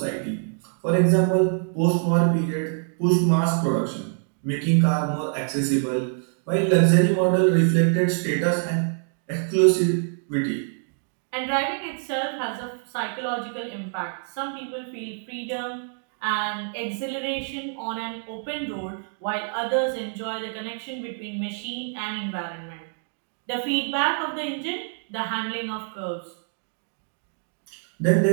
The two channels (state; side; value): silent; left; 61 dB below the other